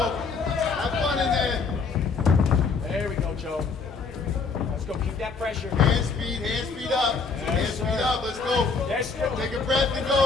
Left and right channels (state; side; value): quieter; right; 4.8 dB